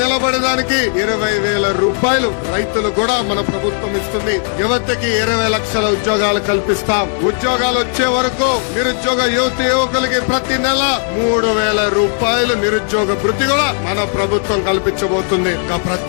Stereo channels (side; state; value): right; silent; 55 dB below the other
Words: 20,000 రూపాయలు రైతులు కూడా మన ప్రభుత్వం ఇస్తుంది. యువతకి 20 లక్షల ఉద్యోగాలు కల్పిస్తాం. ఉద్యోగాలు వచ్చే వరకు నిరుద్యోగ యువకులకి ప్రతి నెల 3,000 రూపాయలు నిరుద్యోగ భృతి కూడా మన ప్రభుత్వం కల్పించబోతుంది. ఇంకా